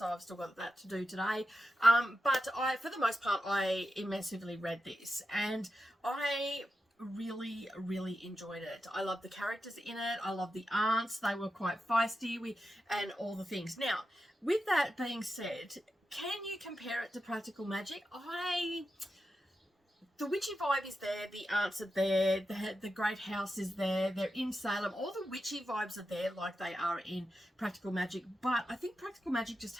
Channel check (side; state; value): both; normal; correlation 0.89